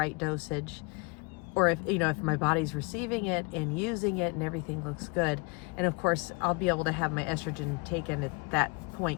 dosage or if, you know, if my body's receiving it and using it and everything looks good. And of course, I'll be able to have my estrogen taken at that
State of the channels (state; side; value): quieter; right; 28.7 dB